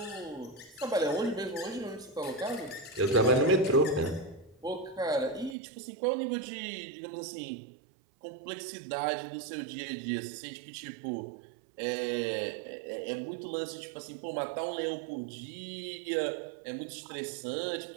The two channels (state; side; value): drops out; left; at 5.6 s